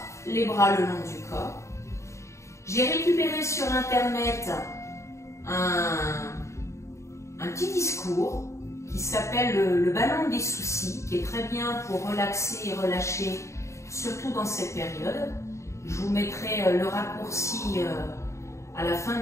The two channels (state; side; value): late; right; 0.14 ms